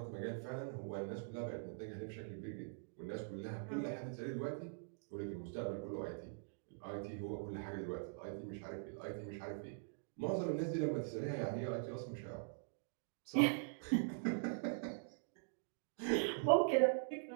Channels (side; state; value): left; silent; digital silence